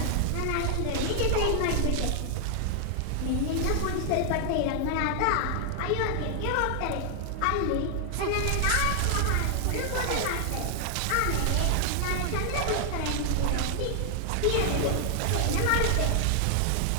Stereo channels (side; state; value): both; different; correlation 0.00